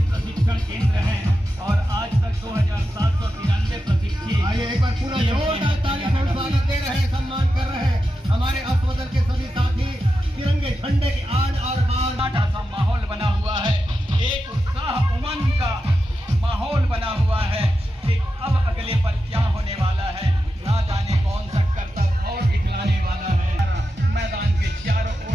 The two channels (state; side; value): normal; both; correlation 0.90